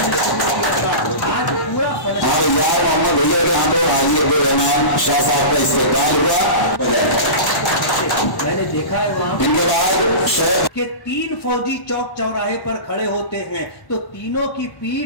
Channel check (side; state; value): right; late; 1.1 ms